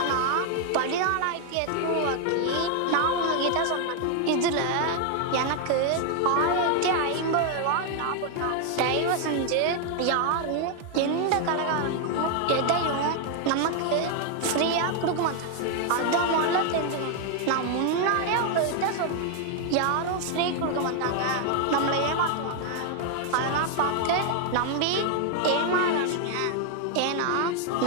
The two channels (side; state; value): both; different; correlation 0.00